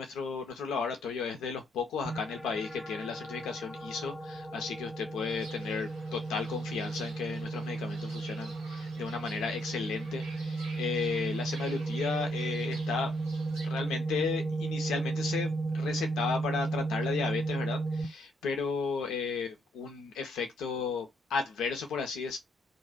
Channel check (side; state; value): both; normal; correlation 0.73